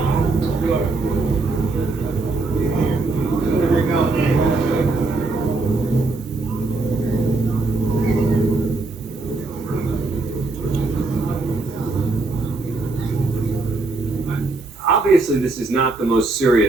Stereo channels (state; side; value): quieter; left; 3.5 dB